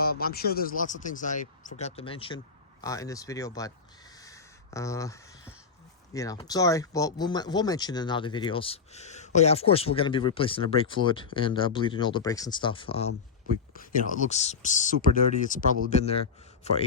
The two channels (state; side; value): quieter; right; 5.4 dB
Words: sure there's lots of things I forgot to mention in this video, but you know, sorry. Well, we'll mention it in other videos. Oh yeah, of course we're gonna be replacing the brake fluid and bleeding all the brakes and stuff. You know, it looks super dirty. It's probably been there for